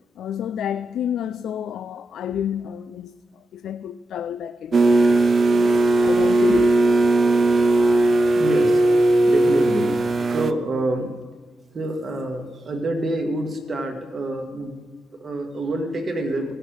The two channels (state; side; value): normal; both; correlation 0.89